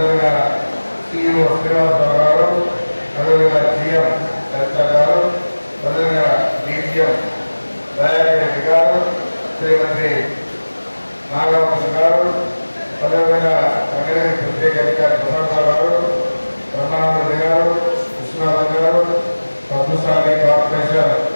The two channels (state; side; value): inverted; both; correlation -1.00